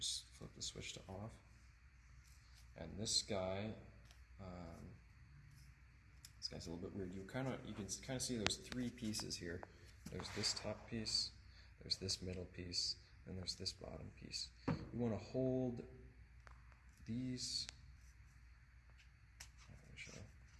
flip the switch to off. And this guy's a little bit weird. You can kind of see there's three pieces here. There's this top piece, there's this middle piece, and there's this bottom piece. You want to hold these.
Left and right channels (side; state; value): both; identical; correlation 1.00